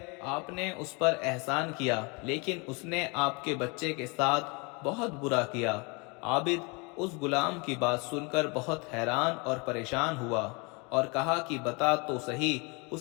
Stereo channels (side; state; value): right; quieter; 29.9 dB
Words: آپ نے اس پر احسان کیا، لیکن اس نے آپ کے بچے کے ساتھ بہت برا کیا۔ عابد اس غلام کی بات سن کر بہت حیران اور پریشان ہوا اور کہا کہ بتا تو صحیح،